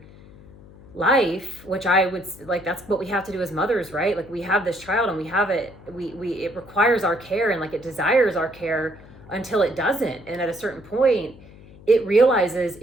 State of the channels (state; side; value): noise; left; hum, 21 dB below the sound